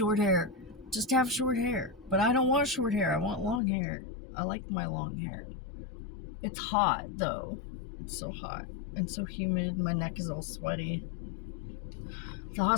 hair. Just have short hair. But I don't want short hair. I want long hair. I like my long hair. It's hot, though. It's so hot and so humid. My neck is all sweaty. The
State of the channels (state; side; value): drops out; right; at 3.6 s